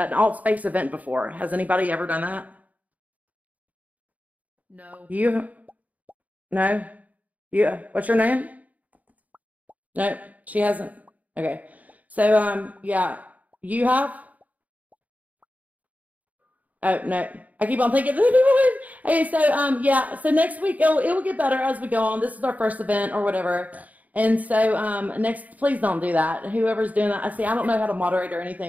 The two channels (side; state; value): left; late; 0.074 ms